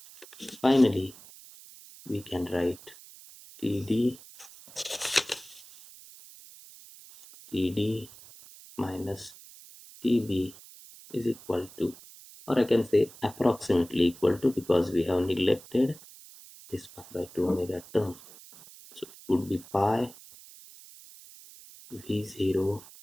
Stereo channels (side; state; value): right; noise; hiss, 20 dB below the sound